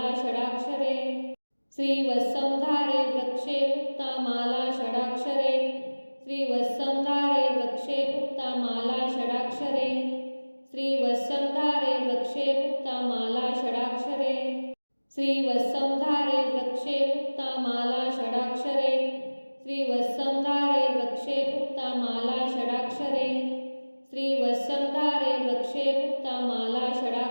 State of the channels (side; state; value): both; inverted; correlation -1.00